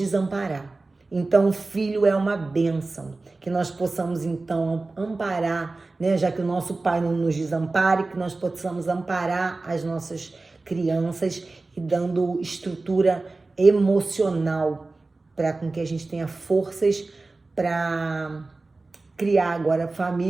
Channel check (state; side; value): quieter; left; 3.4 dB